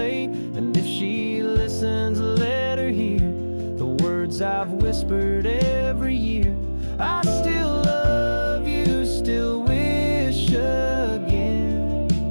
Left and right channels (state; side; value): inverted; both; correlation -1.00